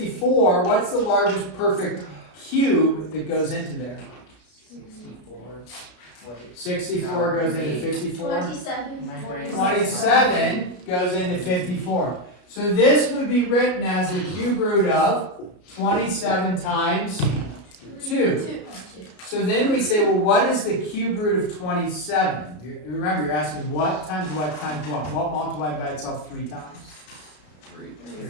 what's the largest perfect cube that goes into there? 64 goes into 54. 27 goes into 54. So this would be written as the cube root of 27 times 2. So then we say, well, what is the cube root of 27? Remember, you're asking what times what times what? What multiplied by itself 3 times?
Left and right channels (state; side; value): late; right; 33 ms